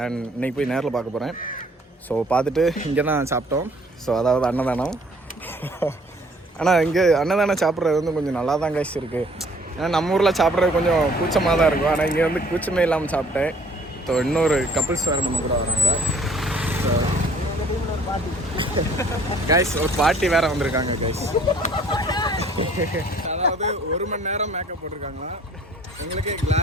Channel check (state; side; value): normal; both; correlation 0.57